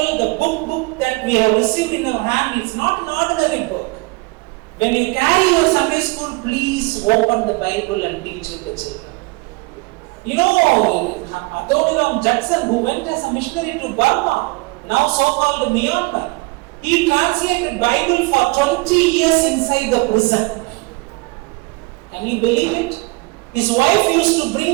the book that we have received in our hand, it's not an ordinary book. When you carry your Sunday school, please open the Bible and teach it to children. You know, Adoniram Judson, who went as a missionary to Burma, now so-called Myanmar, he translated Bible for 20 years inside the prison. Can you believe it? His wife used to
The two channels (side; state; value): left; quieter; 26.4 dB